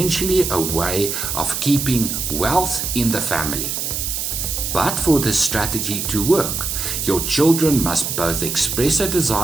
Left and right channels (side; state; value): right; noise; hiss, 3 dB below the sound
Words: a way of keeping wealth in the family. But for this strategy to work, your children must both express a